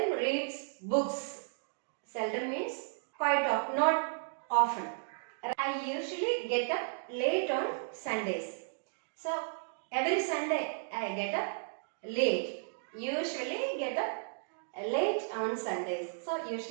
reads books. Seldom means quite often, not often. I usually get up late on Sundays. So every Sunday I get up late. Usually get up late on Sundays. So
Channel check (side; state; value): left; silent; digital silence